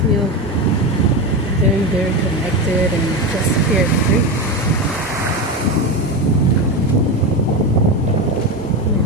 very, very connected and just carefree.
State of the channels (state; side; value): normal; both; correlation 0.18